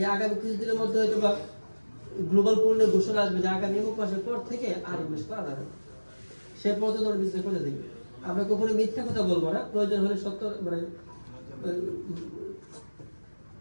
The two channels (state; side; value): inverted; both; correlation -1.00